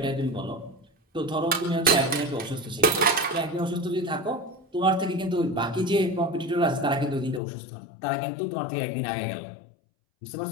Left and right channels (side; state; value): right; drops out; at 7.4 s